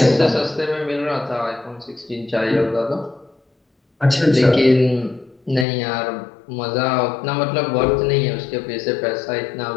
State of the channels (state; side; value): drops out; right; at 5.7 s